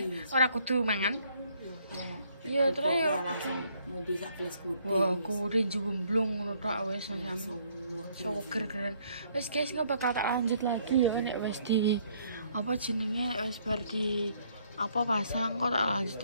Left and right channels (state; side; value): inverted; both; correlation -0.66